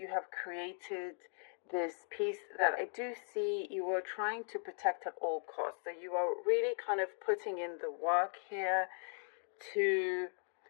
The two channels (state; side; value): silent; right; 52 dB below the other